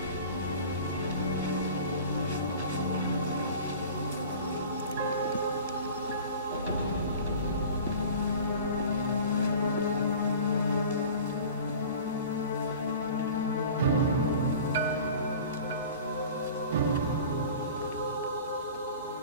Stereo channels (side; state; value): both; inverted; correlation -0.40